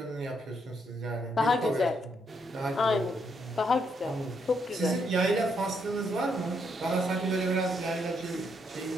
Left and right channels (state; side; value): normal; both; correlation 0.76